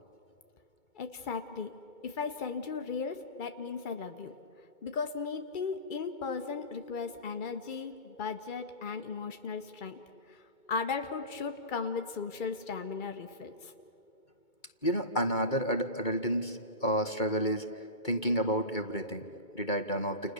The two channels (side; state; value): right; late; 2.3 ms